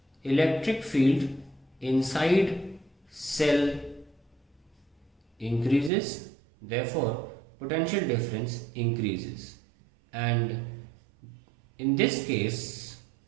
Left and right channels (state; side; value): drops out; left; at 5.9 s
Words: electric field inside cell increases, therefore potential difference increases, and in this case